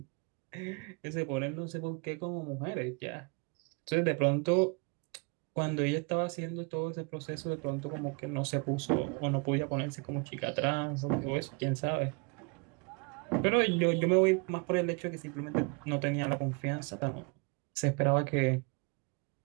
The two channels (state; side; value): quieter; left; 32.1 dB